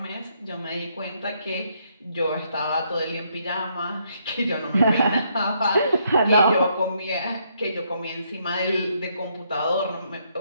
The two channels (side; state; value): both; inverted; correlation -0.73